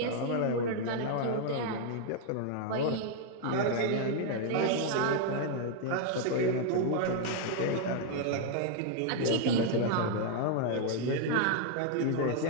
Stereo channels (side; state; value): both; different; correlation 0.00